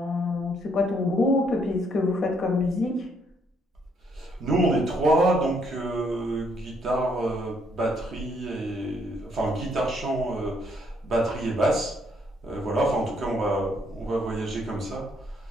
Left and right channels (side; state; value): both; normal; correlation 0.70